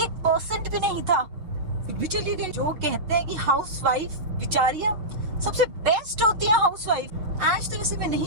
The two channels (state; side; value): late; left; 6.5 ms